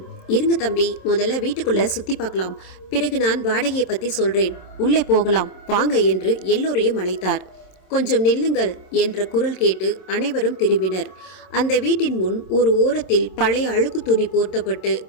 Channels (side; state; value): right; late; 27 ms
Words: இருங்க தம்பி, முதல்ல வீட்டுக்குள்ளே சுற்றி பார்க்கலாம், பிறகு நான் வாடகையை பற்றி சொல்கிறேன், உள்ளே போகலாம் வாங்க என்று எல்லோரையும் அழைத்தார். கொஞ்சம் நில்லுங்கள் என்ற குரல் கேட்டு அனைவரும் திரும்பினர். அந்த வீட்டின் முன் ஒரு ஓரத்தில் பழைய அழுக்கு துணி போர்த்தப்பட்டு